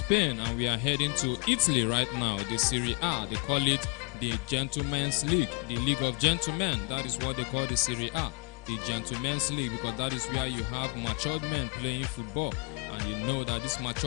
and we are heading to Italy right now. The Serie A, they call it the Gentlemen's League, the League of Gentlemen. That is what they call the Serie A, the Gentlemen's League, because that is where you have matured men playing football. And you know that these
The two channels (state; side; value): quieter; right; 32.8 dB